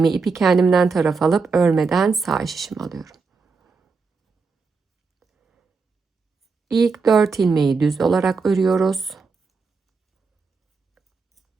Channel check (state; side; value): quieter; left; 4.6 dB